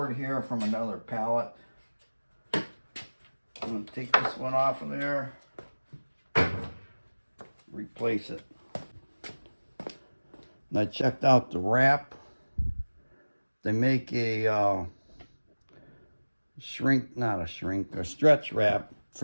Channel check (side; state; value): both; inverted; correlation -1.00